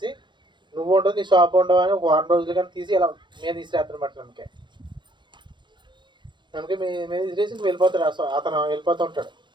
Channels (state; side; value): late; left; 0.23 ms